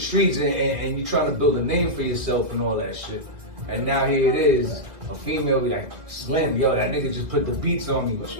and you're trying to build a name for yourself and all that shit. And now here it is, a female be like, Slim, yo, that nigga just put the beats on me. What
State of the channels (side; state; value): left; late; 2.0 ms